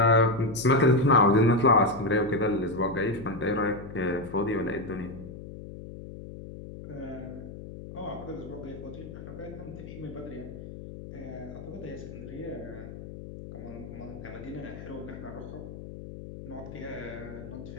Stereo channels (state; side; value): noise; left; hum, 12 dB below the sound